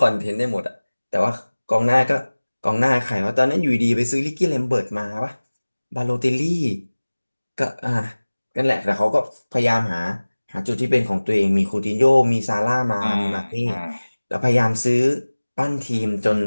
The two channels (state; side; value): inverted; both; correlation -1.00